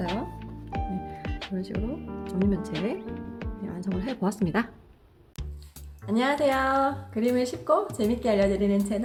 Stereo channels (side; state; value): both; identical; correlation 1.00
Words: 네, 이런 식으로 정리면체 완성을 해보았습니다. 안녕하세요. 그림을 쉽고 재밌게 알려드리는